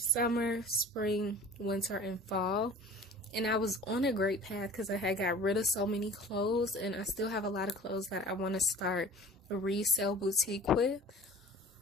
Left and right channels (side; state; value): both; normal; correlation 0.43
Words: spring, winter, and fall. And I was on a great path because I had got rid of so many clothes, and I still have a lot of clothes that I want to start a resale boutique with.